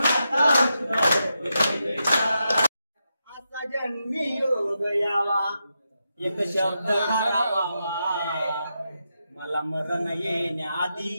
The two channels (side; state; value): both; inverted; correlation -0.86